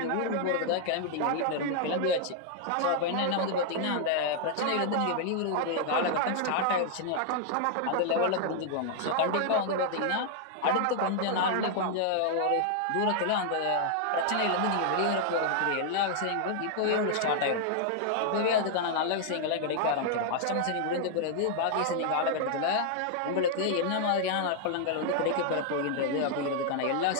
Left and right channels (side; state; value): both; different; correlation -0.01